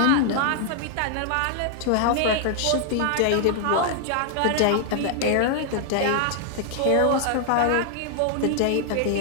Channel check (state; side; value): different; both; correlation 0.00